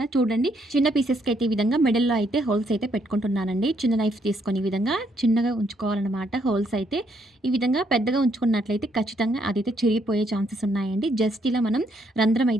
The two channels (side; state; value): both; normal; correlation 0.72